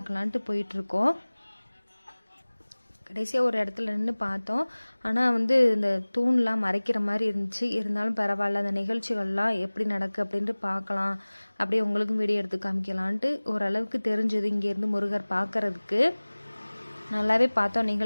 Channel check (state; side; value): inverted; both; correlation -1.00